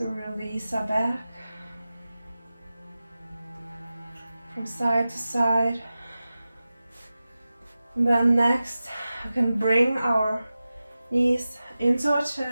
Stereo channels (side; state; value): both; inverted; correlation -0.94